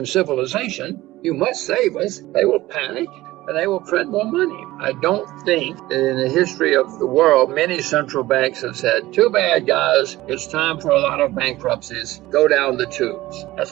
civilization. You must save us. They will panic and they will print more money. I don't think that in the history of the world, many central banks have said, too bad, guys, it's time for a lot of bankruptcies. Go down the tubes.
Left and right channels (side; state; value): left; quieter; 17.3 dB